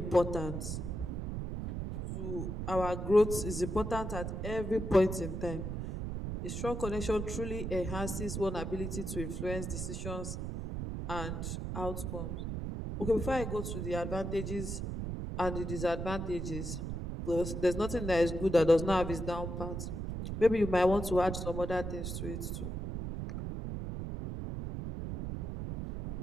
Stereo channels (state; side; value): noise; right; rumble, 4 dB below the sound